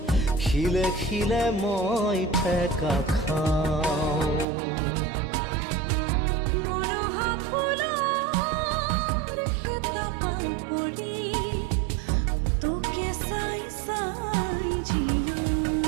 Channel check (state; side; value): drops out; left; at 4.5 s